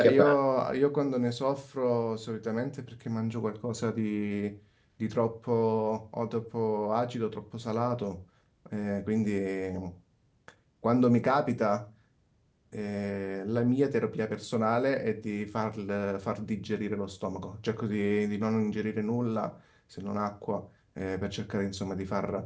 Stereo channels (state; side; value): identical; both; correlation 1.00